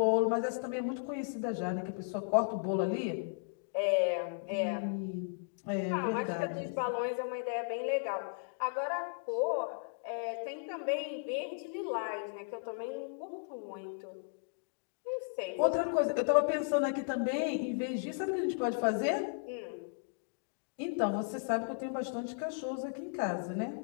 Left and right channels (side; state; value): right; silent; digital silence